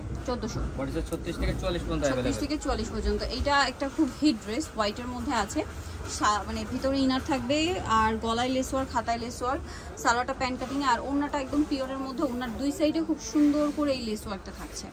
1400। বডি সাইজ 36 থেকে 40 পর্যন্ত अवेलेबल। 36 থেকে 40 পর্যন্ত। এটা একটা খুব হিট ড্রেস, হোয়াইটের মধ্যে আছে, মানে ভিতরে ইনার থাকবে আর গলায় লেস ওয়ার্ক, হাতায় লেস ওয়ার্ক, সালোয়ারটা প্যান্ট কাটিং আর ওড়নাটা একদম পিওরের মধ্যে। ওড়নার দুই সাইডে খুব সুন্দর করে এই লেস ওয়ার্কটা থাকছে,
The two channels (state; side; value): identical; both; correlation 1.00